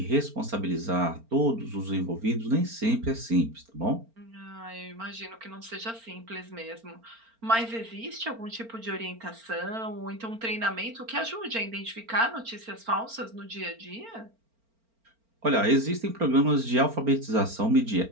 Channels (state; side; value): late; left; 4.4 ms